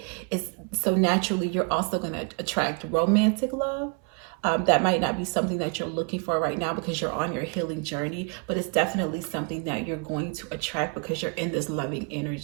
is so naturally you're also going to attract romantic love. That might not be something that you're looking for right now because you're on your healing journey, but it's definitely something that you're going to attract because you're in this loving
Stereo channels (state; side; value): quieter; left; 36.2 dB